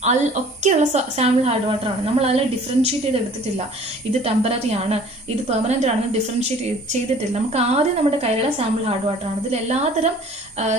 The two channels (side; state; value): both; normal; correlation 0.50